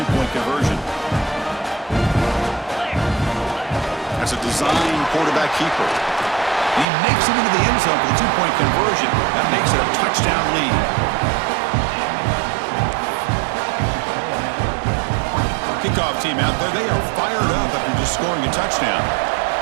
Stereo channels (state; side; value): drops out; left; at 6.9 s